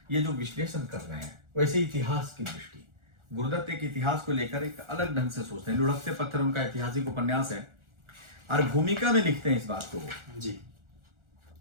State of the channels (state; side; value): late; left; 1.4 ms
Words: ये जो विश्लेषण कर रहे हैं, वैसे इतिहास की दृष्टि, गुरुदत्त एक इतिहास को लेकर एक अलग ढंग से सोचते हैं। लुढ़कते पत्थर उनका ऐतिहासिक उपन्यास है, और भूमिका में लिखते हैं इस बात को जी।